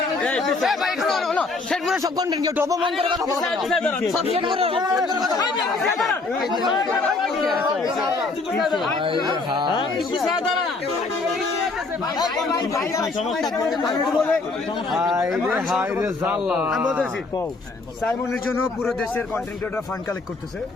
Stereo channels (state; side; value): quieter; right; 3.7 dB